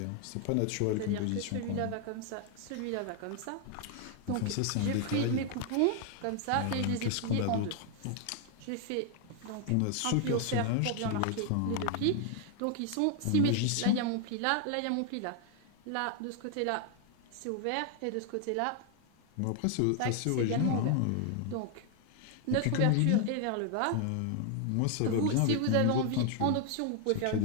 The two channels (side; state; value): both; different; correlation 0.00